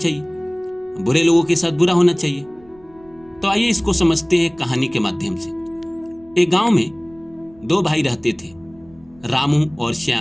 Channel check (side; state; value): right; noise; rumble, 28 dB below the sound